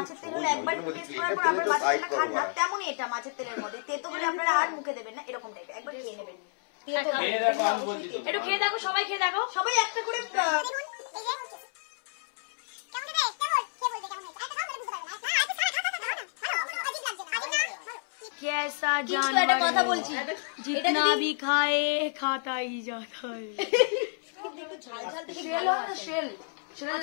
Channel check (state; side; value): silent; right; 58 dB below the other